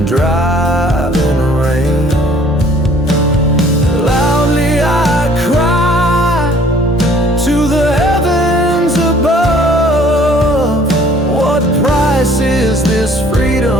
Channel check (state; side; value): normal; both; correlation 0.56